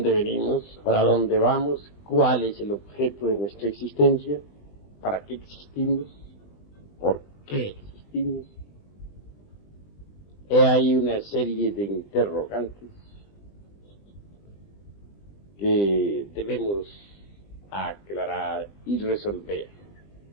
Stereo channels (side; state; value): right; late; 20 ms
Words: venimos? ¿Para dónde vamos? ¿Cuál es el objeto de nuestra existencia? ¿Para qué existimos? ¿Por qué existimos? He ahí una serie de interrogantes que debemos aclarar y resolver.